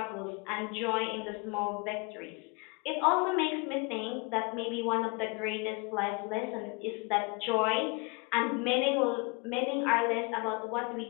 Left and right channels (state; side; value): quieter; right; 30.6 dB